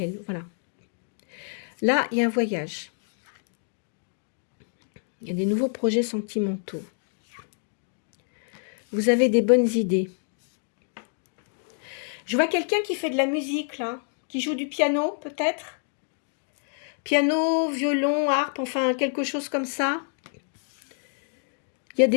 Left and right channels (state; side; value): silent; right; 60 dB below the other